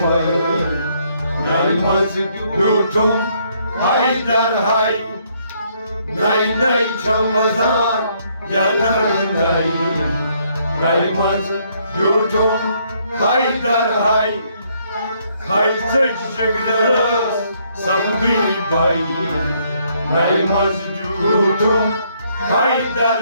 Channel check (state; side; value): inverted; both; correlation -0.69